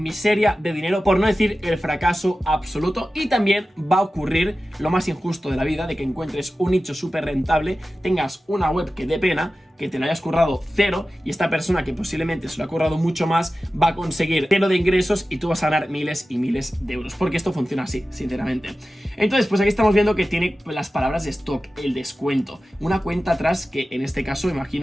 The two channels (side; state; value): both; normal; correlation 0.94